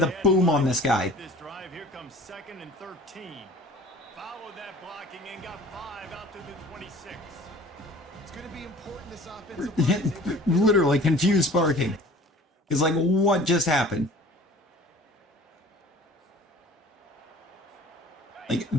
boom on this guy. This drive, here comes 2nd and 13. Followed that blocking and got 5 out to the 26. It's going to be important this offensive line. Literally confused barking. It's like, what just happened? Like,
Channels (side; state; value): both; normal; correlation 0.46